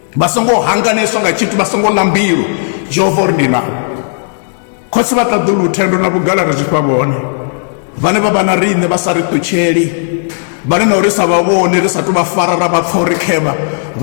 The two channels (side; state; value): right; silent; digital silence